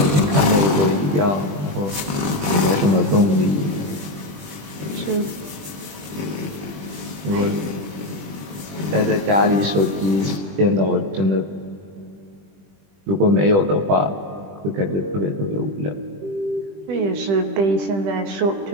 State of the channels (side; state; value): left; late; 20 ms